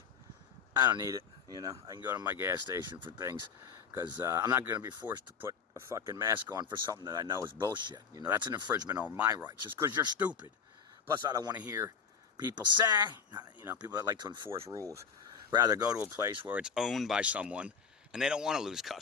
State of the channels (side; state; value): right; quieter; 6.5 dB